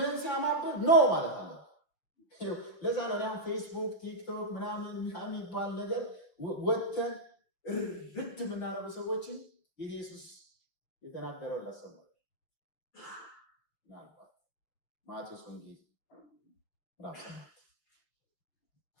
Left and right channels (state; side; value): late; right; 6.5 ms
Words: ሲያማብህ ኖ ማለት አለ። ለዛ ነው አሁን ፌስቡክ፣ ቲክቶክ ምናምን የሚባል ነገር ወጥተን ርድ የምናደርጉ ሰዎችን ኢየሱስ የተናገረው ላሰማል። ምናልባት ማቴዎስ ወንጌል ምዕራፍ 7